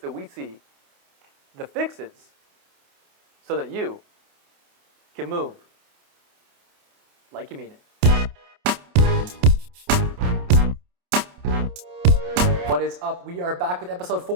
that we see, the fixes, so that you can move like you mean it. What is up? We are back with episode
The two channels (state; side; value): late; left; 28 ms